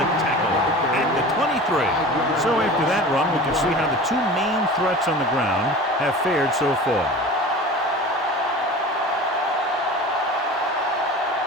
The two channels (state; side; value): normal; both; correlation 0.37